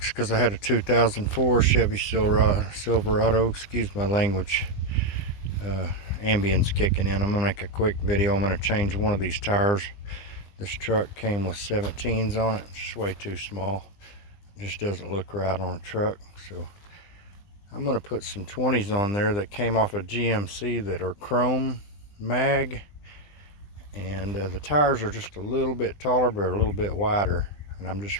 is because I had a 2004 Chevy Silverado. Excuse my language. Ambience kicking in. I'm going to make a quick video. I'm going to change one of these tires. This truck came with 17s on it. It's way too small. It just doesn't look right on a truck. So I'm going to put some 20s on there that came off a GMC that are chrome mag, and the tires are just a little bit taller but a little bit wider, and I'm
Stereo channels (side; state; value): right; late; 20 ms